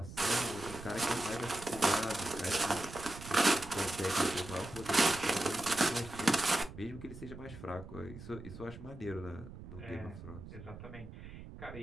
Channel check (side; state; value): right; noise; rumble, 13 dB below the sound